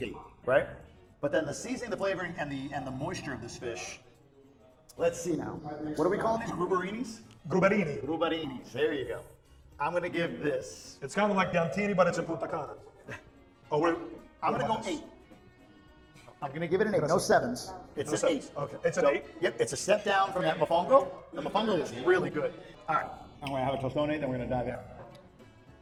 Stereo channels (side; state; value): both; identical; correlation 1.00